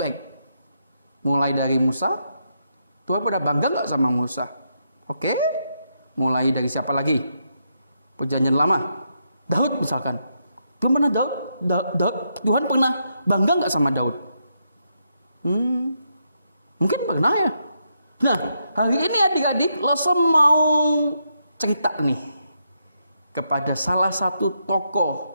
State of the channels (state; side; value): inverted; both; correlation -0.80